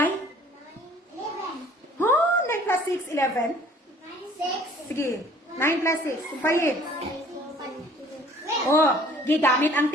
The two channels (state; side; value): normal; both; correlation 0.54